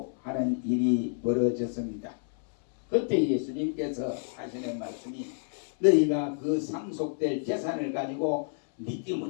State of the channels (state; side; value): silent; right; 59 dB below the other